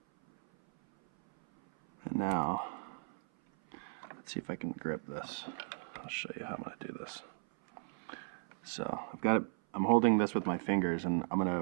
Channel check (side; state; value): left; silent; 54 dB below the other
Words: And now, let's see if I can grip this. I'll show you how I'm gonna do this. So I've got it, I'm holding this with my fingers, and I'm